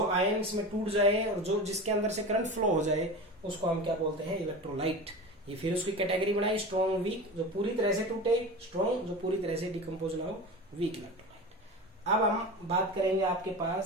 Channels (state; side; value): normal; both; correlation 0.30